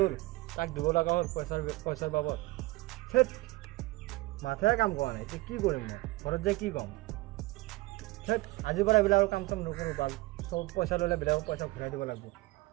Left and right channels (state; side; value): quieter; left; 21.6 dB